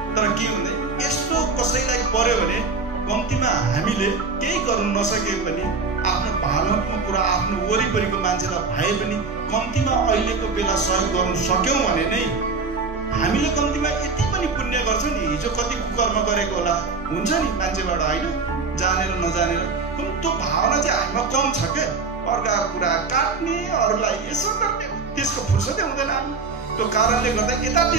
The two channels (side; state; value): left; quieter; 4.4 dB